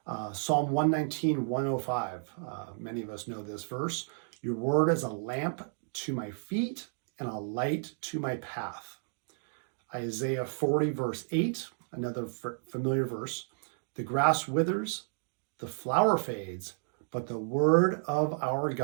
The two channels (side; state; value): left; silent; digital silence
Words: Psalm 119, 105, many of us know this verse. "Your word is a lamp to my feet and a light to my path." Isaiah 40, verse 8, another familiar verse. "The grass withers, the flower fades, but the word of our